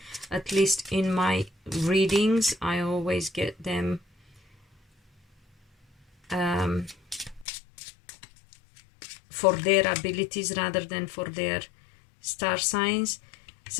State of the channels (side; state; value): right; drops out; at 7.5 s